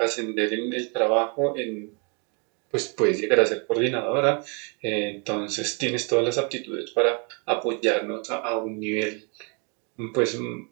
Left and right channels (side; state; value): left; quieter; 35.7 dB